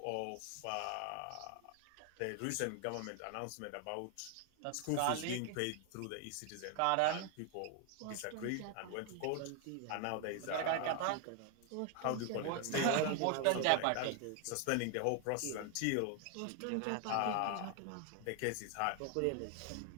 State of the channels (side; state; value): both; different; correlation 0.00